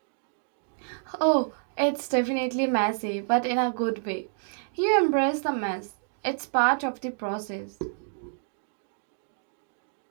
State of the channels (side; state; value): left; silent; digital silence